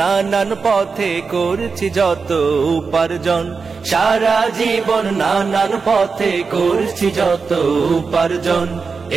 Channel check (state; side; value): quieter; left; 4.9 dB